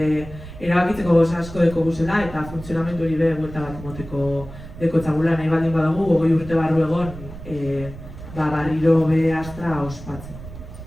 erabakitzeko goza asko deko guzela eta funtzionamendu hori buelta bat moteko deko txagula nahi baldin badagu 20 urte barru egon barriro be Astra ospatzen.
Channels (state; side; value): noise; right; rumble, 14 dB below the sound